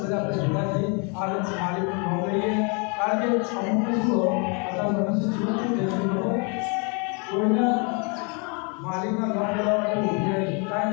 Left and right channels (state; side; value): quieter; right; 34.7 dB